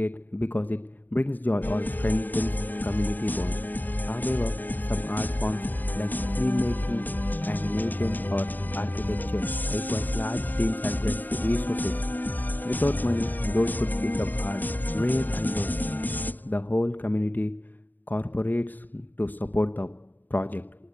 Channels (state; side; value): late; right; 0.087 ms